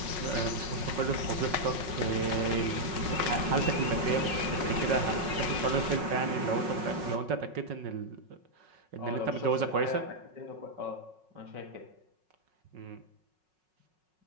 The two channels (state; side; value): late; left; 5.4 ms